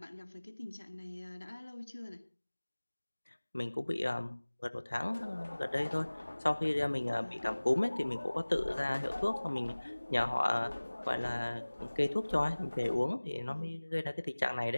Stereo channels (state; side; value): inverted; both; correlation -1.00